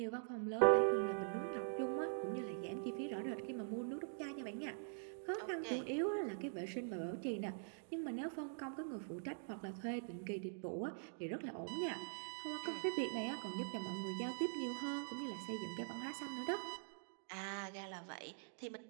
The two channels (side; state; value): left; silent; digital silence